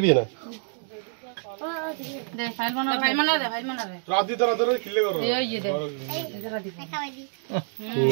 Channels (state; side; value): silent; left; digital silence